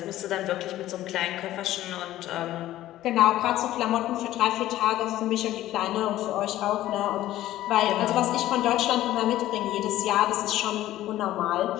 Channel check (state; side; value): quieter; right; 14.4 dB